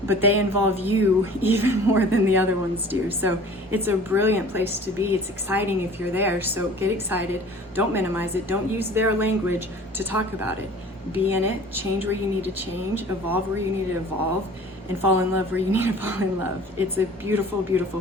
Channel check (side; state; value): both; normal; correlation 0.46